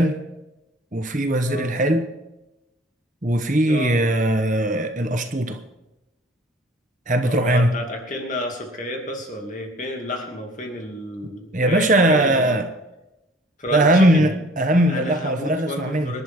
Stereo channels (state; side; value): normal; both; correlation 0.53